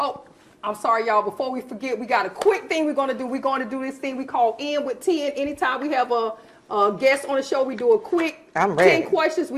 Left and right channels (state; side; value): identical; both; correlation 1.00